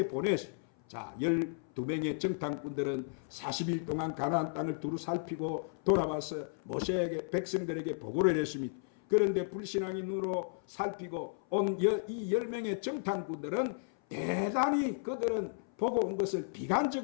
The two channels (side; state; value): right; silent; 55 dB below the other